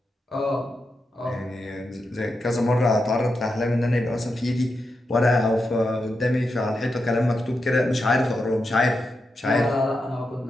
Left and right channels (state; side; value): normal; both; correlation 0.87